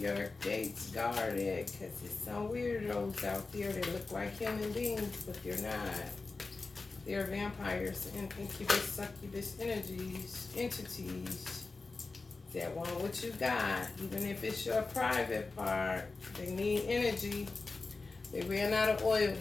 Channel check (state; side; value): quieter; right; 3.8 dB